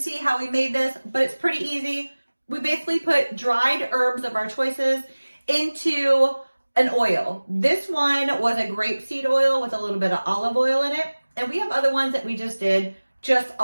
how we made this, but it's pretty easy. We basically put dried herbs of our choices into an oil. This one was a grapeseed oil with a little bit of olive oil in it. And we have other ones that we just did just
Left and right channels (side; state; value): both; inverted; correlation -1.00